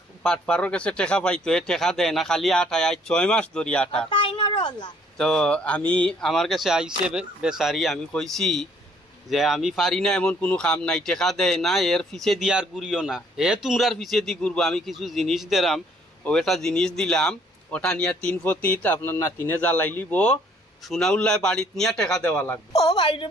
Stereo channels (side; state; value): both; normal; correlation 0.63